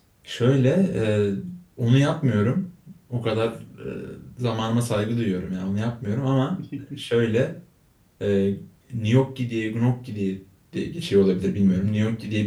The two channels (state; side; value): identical; both; correlation 1.00